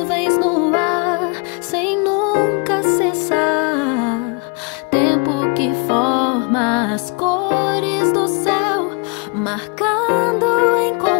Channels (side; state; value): right; quieter; 32.1 dB